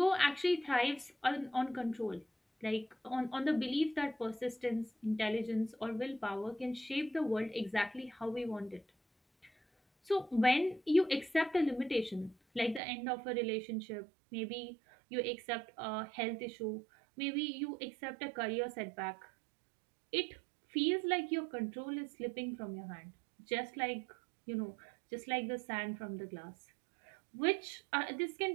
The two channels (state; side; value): drops out; left; at 12.8 s